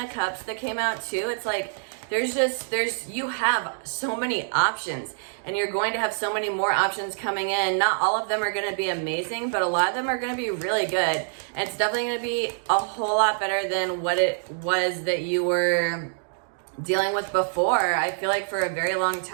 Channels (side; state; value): left; silent; digital silence